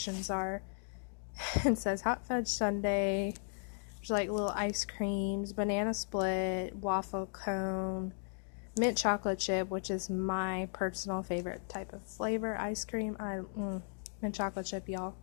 are. It says hot fudge sundae, there's like little ice creams, banana split, waffle cone, mint chocolate chip, which is my personal favorite type of flavor ice cream. Mint chocolate chip, y'all.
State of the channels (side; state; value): right; silent; digital silence